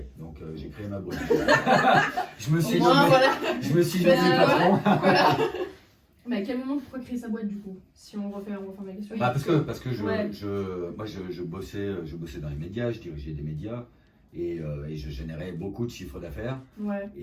donc j'ai créé ma boîte. je me suis Au moins, nommé, voilà. je me suis Tu fais nommé ça, patron. Voilà. Mais à quel moment pourquoi créer sa boîte du coup? Si on refait ma question. Bah, parce que Ouais. moi je bossais dans les médias, je dirigeais des médias et je générais beaucoup de chiffres d'affaires. Ouais.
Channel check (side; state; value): both; identical; correlation 1.00